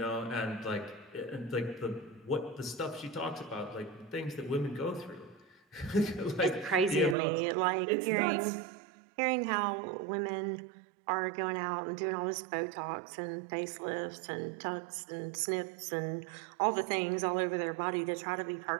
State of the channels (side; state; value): left; drops out; at 7.2 s